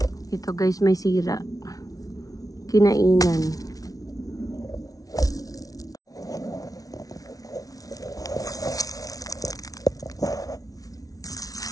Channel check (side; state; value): right; late; 0.18 ms